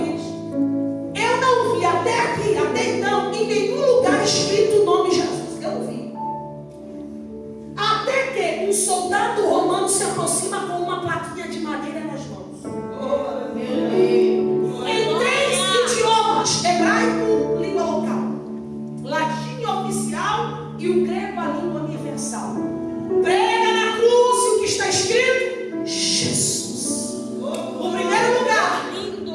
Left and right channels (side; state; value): both; identical; correlation 1.00